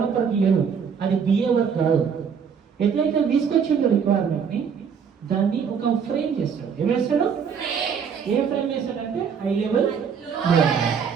లేదు, అది బిఏ వర్క్ కాదు. ఎట్లయితే తీసుకొచ్చిందో రిక్వైర్మెంట్ ని దాన్ని ఒక ఫ్రేమ్ చేస్తాడు. ఏం వేస్తాడు? ఏ ఫ్రేమ్ వేస్తాడంటే హై లెవెల్,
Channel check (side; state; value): left; quieter; 6.8 dB